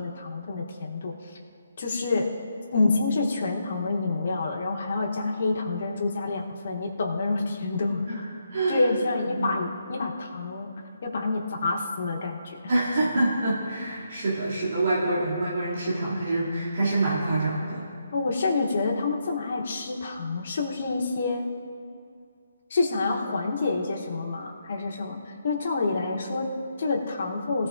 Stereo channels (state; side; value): inverted; both; correlation -0.80